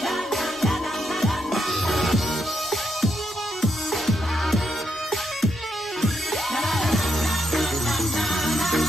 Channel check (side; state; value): both; normal; correlation 0.80